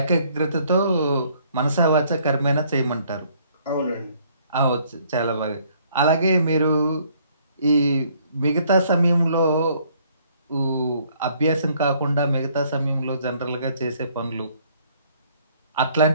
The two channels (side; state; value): both; inverted; correlation -0.63